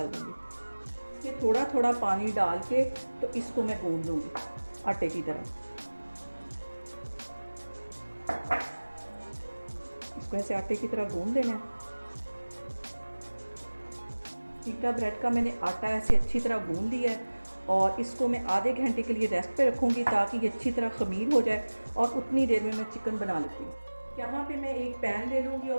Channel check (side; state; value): both; inverted; correlation -1.00